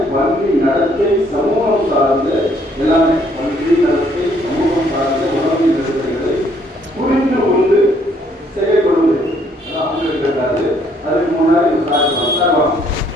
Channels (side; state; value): both; normal; correlation 0.66